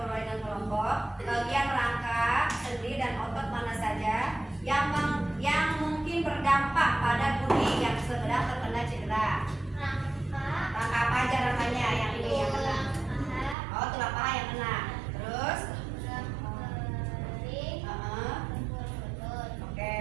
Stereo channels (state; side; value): drops out; left; at 13.6 s